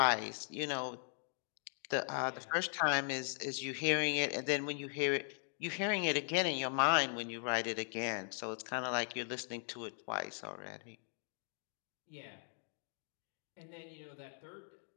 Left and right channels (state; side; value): silent; right; 52 dB below the other